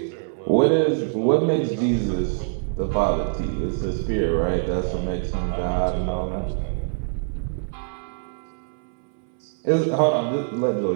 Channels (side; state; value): left; silent; 62 dB below the other